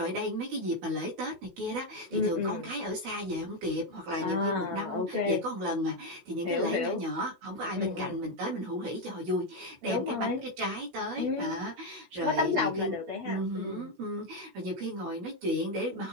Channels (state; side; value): late; left; 16 ms